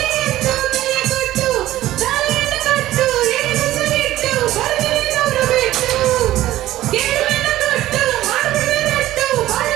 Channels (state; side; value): quieter; left; 14.7 dB